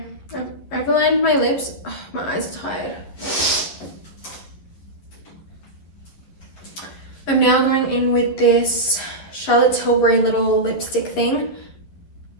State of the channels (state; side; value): late; right; 11 ms